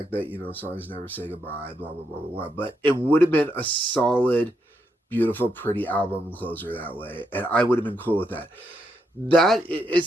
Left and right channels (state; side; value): normal; both; correlation 0.80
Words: that, songs never say goodbye, blah, blah, blah, blah, blah. But it would have been a solid, beautiful, pretty album closer that way. And I would have been cool with that.